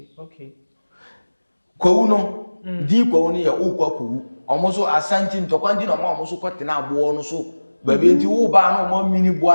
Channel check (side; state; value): both; inverted; correlation -1.00